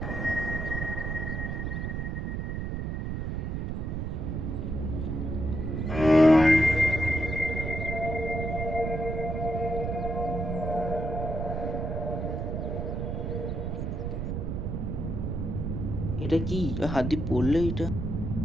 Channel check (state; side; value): noise; right; rumble, 2 dB below the sound